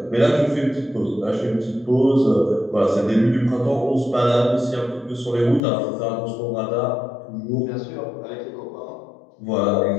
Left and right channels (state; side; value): drops out; right; at 5.6 s